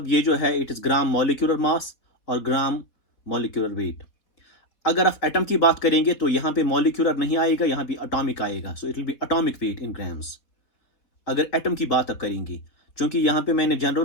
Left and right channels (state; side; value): late; right; 4.3 ms